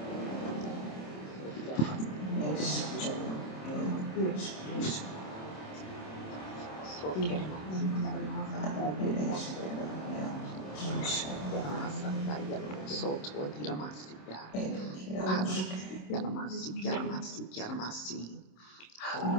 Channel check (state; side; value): late; right; 27 ms